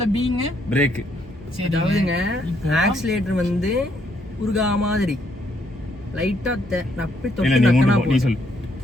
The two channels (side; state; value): both; normal; correlation 0.72